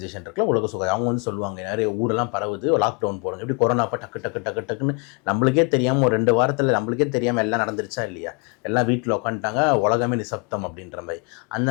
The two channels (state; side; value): quieter; right; 32.9 dB